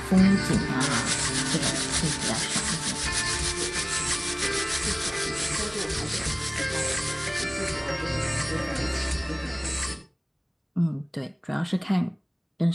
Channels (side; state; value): both; identical; correlation 1.00